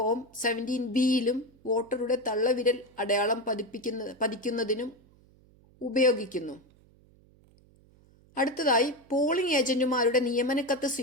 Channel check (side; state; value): right; noise; hum, 29 dB below the sound